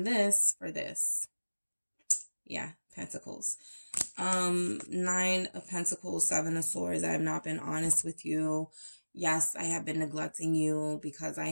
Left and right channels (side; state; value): both; inverted; correlation -1.00